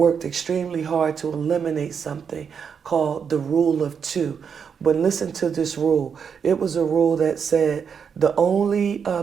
extremely hard to eliminate something called the rule of two. But listen to this rule. It was a rule that said the only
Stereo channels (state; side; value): quieter; left; 6.8 dB